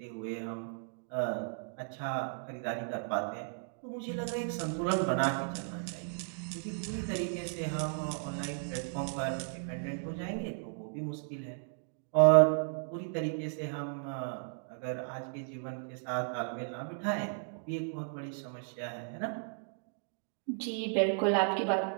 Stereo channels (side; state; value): left; silent; digital silence